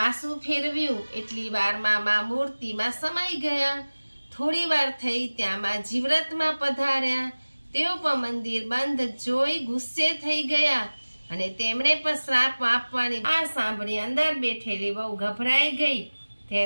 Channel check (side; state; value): both; inverted; correlation -1.00